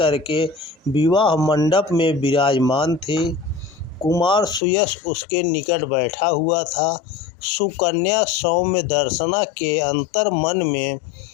विवाह मंडप में विराजमान थी। कुमार सुयश उसके निकट बैठा हुआ था। सुकन्या सौम्य दर्शना के अंतर मन में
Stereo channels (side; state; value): right; drops out; at 4.6 s